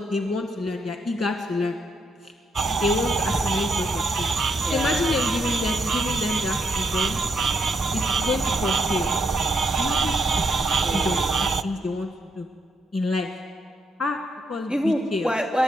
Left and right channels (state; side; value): normal; both; correlation 0.77